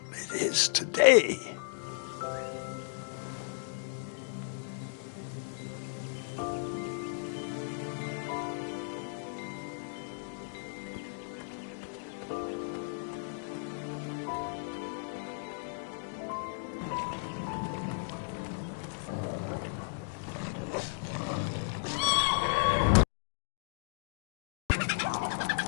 it is today.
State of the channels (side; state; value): right; silent; digital silence